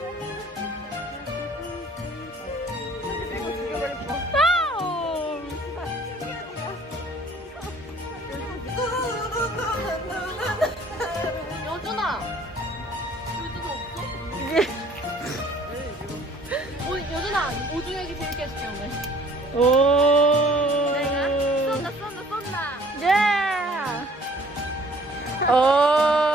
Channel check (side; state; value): both; normal; correlation 0.55